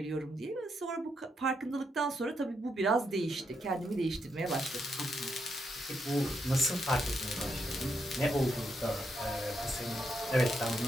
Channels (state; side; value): normal; both; correlation 0.80